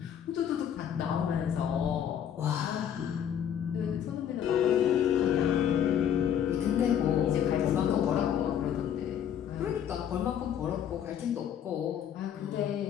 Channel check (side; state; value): right; quieter; 9.3 dB